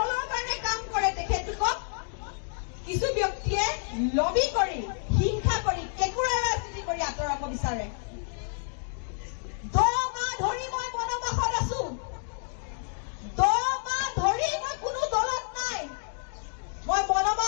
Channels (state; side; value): silent; right; digital silence